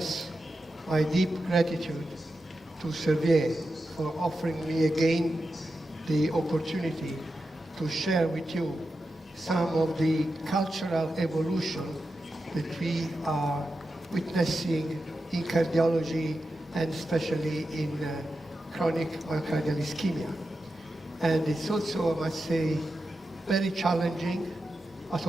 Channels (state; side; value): normal; both; correlation 0.90